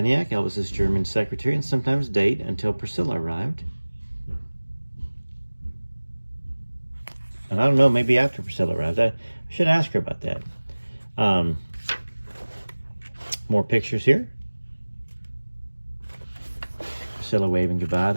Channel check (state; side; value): inverted; both; correlation -1.00